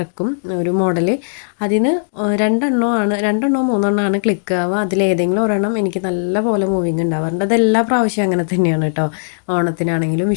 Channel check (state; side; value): silent; right; digital silence